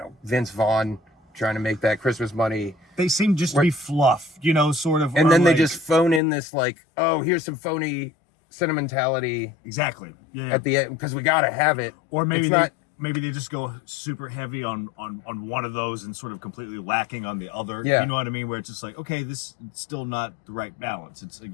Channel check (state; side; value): drops out; right; at 6.2 s